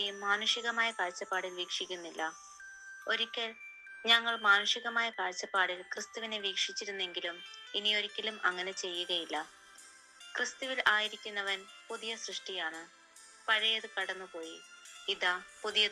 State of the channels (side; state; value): both; identical; correlation 1.00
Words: മാനുഷികമായ കാഴ്ചപ്പാടിൽ വീക്ഷിക്കുന്നില്ല. ഒരിക്കൽ ഞങ്ങൾ മാനുഷികമായ കാഴ്ചപ്പാടിൽ ക്രിസ്തുവിനെ വീക്ഷിച്ചിരുന്നെങ്കിലും ഇനിയൊരിക്കലും അങ്ങനെ ചെയ്യുകയില്ല. ക്രിസ്തുവിൽ ആയിരിക്കുന്നവൻ പുതിയ സൃഷ്ടിയാണ്. പഴയത് കടന്നുപോയി, ഇതാ